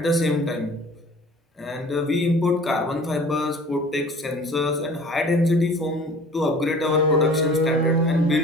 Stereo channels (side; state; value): both; normal; correlation 0.46